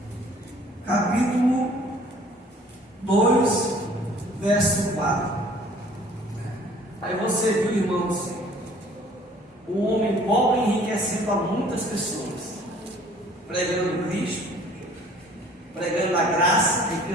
capítulo 2, verso 4. Aí você viu, irmãos, o homem pobre enriquecendo a muitas pessoas, pregando Cristo, pregando a graça,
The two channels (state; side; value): normal; both; correlation 0.54